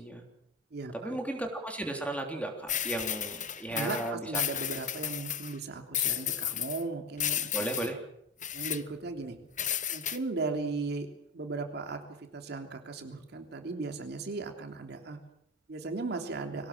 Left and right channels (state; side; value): normal; both; correlation 0.24